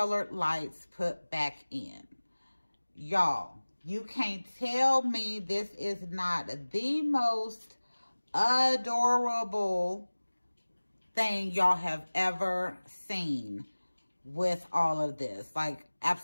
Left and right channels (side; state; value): both; inverted; correlation -1.00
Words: lights put back in. Y'all, you can't tell me this is not the most adorable thing y'all have ever seen with all of this. Like,